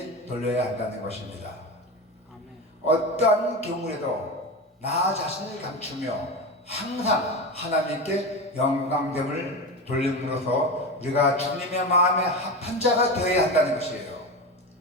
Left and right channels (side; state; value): both; normal; correlation 0.23